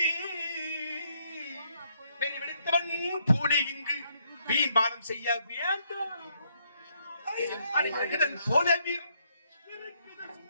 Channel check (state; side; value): inverted; both; correlation -0.73